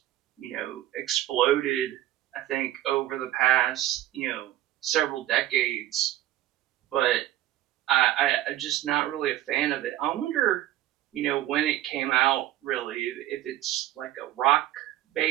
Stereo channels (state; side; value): quieter; left; 13.9 dB